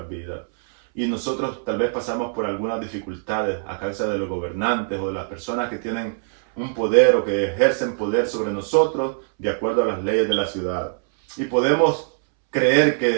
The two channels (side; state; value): left; silent; 64 dB below the other